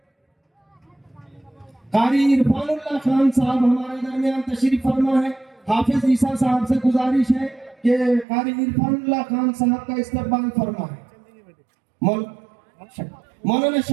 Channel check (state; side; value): drops out; left; at 8.2 s